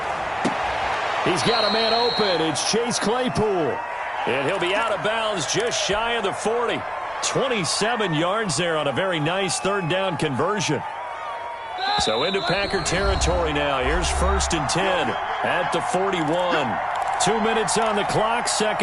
He's got a man open. It's Chase Claypool. And he'll be out of bounds just shy of the 40. 27 yards there on a very nice 3rd down conversion. So into Packer territory now. Here's 1st and 10 at the 41. 2 minutes on the clock,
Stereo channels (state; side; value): identical; both; correlation 1.00